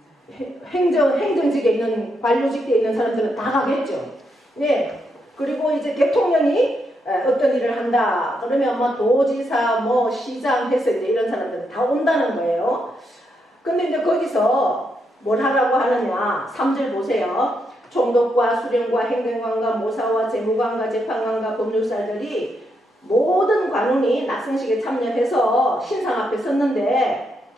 행정직에 있는, 관료직에 있는 사람들은 다 가겠죠. 네. 그리고 이제 대통령이 어떤 일을 한다 그러면 뭐 도지사, 뭐 시장 해서 이제 이런 사람들은 다 온다는 거예요. 근데 이제 거기서 뭘 하라고 하느냐. 3절 보세요. 총독과 수령과 행정관과 모사와 재무관과 재판관과 법률사들이 모든 관원이 낙성식에 참여해서 신상 앞에 섰는데,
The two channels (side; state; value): both; normal; correlation 0.80